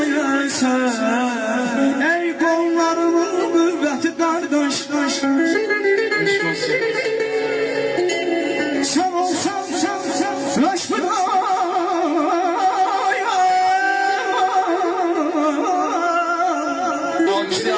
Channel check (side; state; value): both; identical; correlation 1.00